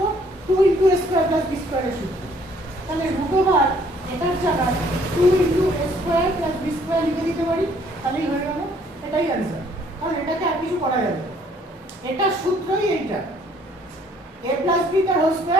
2 into a square plus b স্কয়ারের সূত্র। তাহলে রুট ওভার এটার জায়গায় 2 into a square plus b square লিখে দিতে পারি, তাহলেই হয়ে গেল। এটাই অ্যানসার, কারণ এটাকে আর কিছু করা যাবে না, এটা সূত্রই এইটা। a প্লাস b তার whole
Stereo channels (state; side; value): normal; both; correlation 0.62